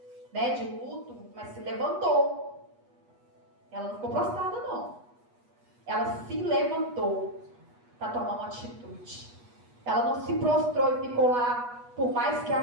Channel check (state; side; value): late; left; 8.3 ms